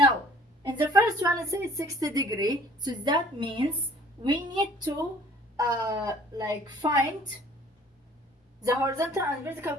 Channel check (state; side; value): normal; both; correlation 0.53